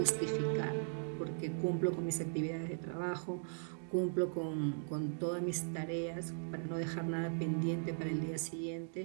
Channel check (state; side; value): silent; left; digital silence